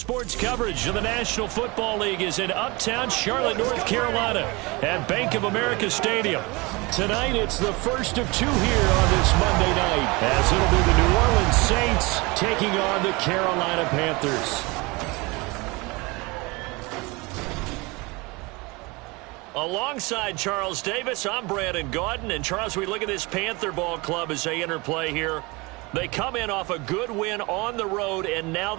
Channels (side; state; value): left; quieter; 25.3 dB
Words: coverage of the National Football League is in uptown Charlotte, North Carolina at Bank of America Stadium. Tonight, it's the first of 2 here on this Monday night, as it'll be the New Orleans Saints taking on the Carolina Panthers. Alongside Charles Davis, I'm Brandon Gaudin. And Charles, we look at this Panther ball club as they interplay here. They come in off a good win on the road, and now